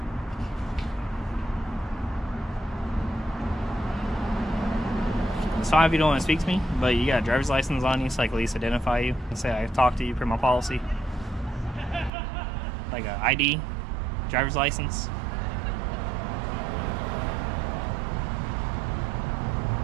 It's fine if you don't want to speak to me, but you got a driver's license on you so I can at least identify you and say I talked to you per my policy. Like a ID, driver's license.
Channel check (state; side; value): drops out; left; at 12.1 s